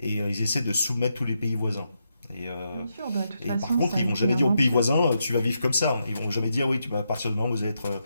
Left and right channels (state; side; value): inverted; both; correlation -0.83